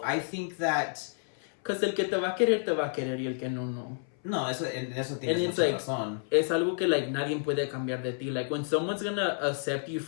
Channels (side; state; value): right; silent; 58 dB below the other